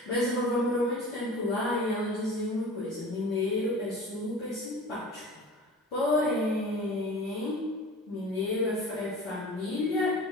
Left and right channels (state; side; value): normal; both; correlation 0.39